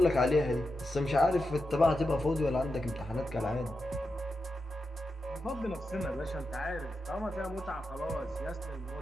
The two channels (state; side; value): normal; both; correlation 0.88